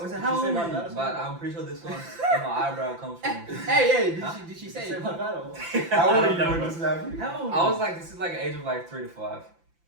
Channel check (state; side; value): late; left; 5.9 ms